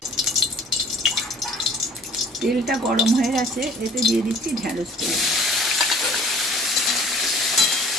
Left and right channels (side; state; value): both; normal; correlation 0.52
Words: তেলটা গরম হয়ে গেছে, এতে দিয়ে দিচ্ছি ঢ্যাঁড়স তেল।